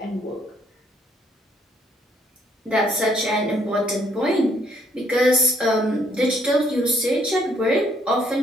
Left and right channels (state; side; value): normal; both; correlation 0.67